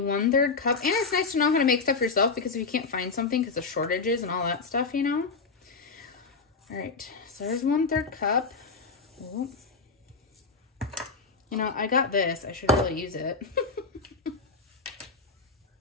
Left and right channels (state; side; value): quieter; right; 4.5 dB